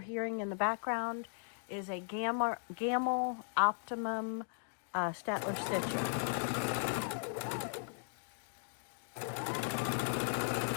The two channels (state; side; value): silent; right; digital silence